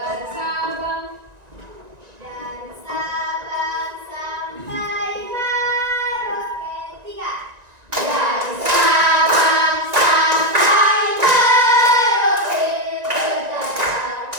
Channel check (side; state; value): left; late; 1.9 ms